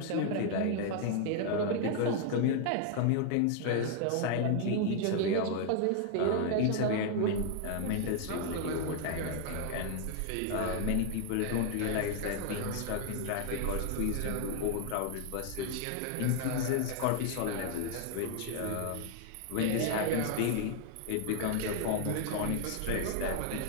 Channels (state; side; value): different; both; correlation 0.00